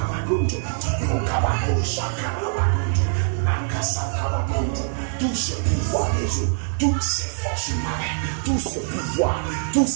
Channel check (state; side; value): silent; left; digital silence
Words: bagonjo. Mokabagoshaka bagonjo. Makasaka bagonjo. Tout ce pouvoir des eaux, toutes ces forces marines, tout ce pouvoir, toutes